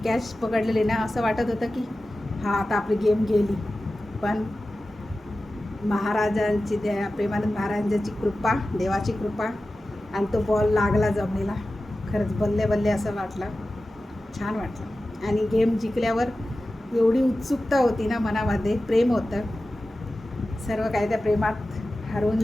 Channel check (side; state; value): both; normal; correlation 0.94